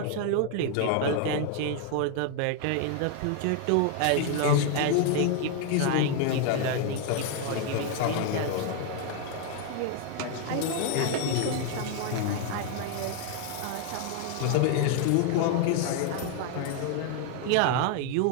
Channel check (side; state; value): both; different; correlation 0.00